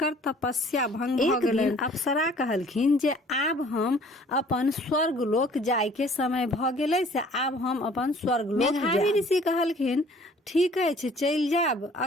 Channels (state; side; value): normal; both; correlation 0.54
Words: तपस्या भंग भ गेलन। अप्सरा कहलखिन जे आब हम अपन स्वर्ग लोक जाय के समय भ गेलै, से आब हम अपन स्वर्ग लोक जायब। मेधावी ऋषि कहलखिन, ठीक अछि, चल जाब,